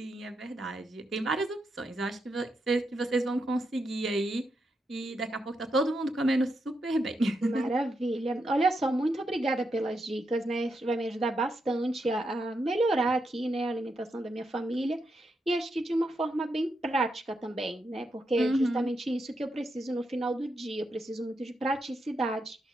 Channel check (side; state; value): both; normal; correlation 0.83